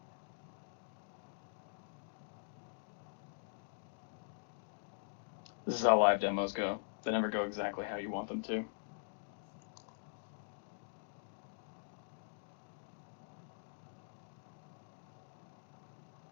This is how live demos go. They never go exactly how you want them to.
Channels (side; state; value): right; silent; digital silence